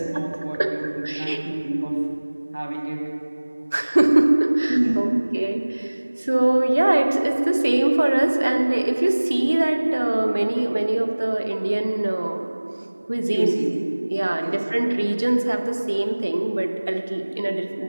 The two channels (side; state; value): both; inverted; correlation -1.00